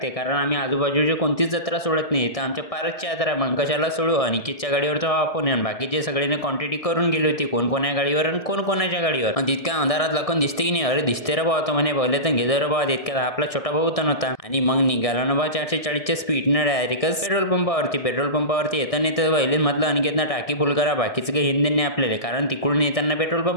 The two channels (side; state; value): right; late; 1.6 ms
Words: कारण आम्ही आजूबाजूची कोणतीच जत्रा सोडत नाही. तर आमच्या पारसची यात्रा मग कशाला सोडू. अनिकेतच्या गाडीवर तर आपण आणि बाकीचे सगळ्यांनी क्वांटिटी करून गेली होती, कोण कोण्या गाडीवर आणि कोण कोणाच्या गाडीवर. आणि तितक्या अंधारात लखन दिसते की नाही. अरे दिसते रे भाऊ, तो म्हणे पहिले तर घेदर रे भाऊ. तितक्यात आपला छोटा भाऊ तर नव्हता आणि मग निघाला ना बा 440च्या स्पीडनं डायरेक्टच पेट्रोल पंपावरती येताना तर पहिले म्हटलं अनिकेतनं टाकी फुल करा, बाकीचं काही हिंदी नाही आपल्याला, कारण तिकडून येताना पेट्रोल